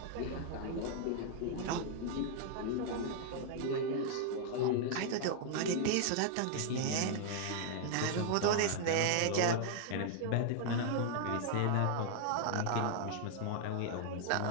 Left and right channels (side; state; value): both; different; correlation -0.01